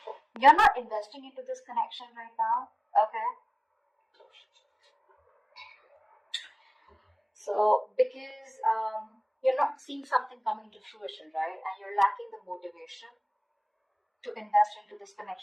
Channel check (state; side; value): identical; both; correlation 1.00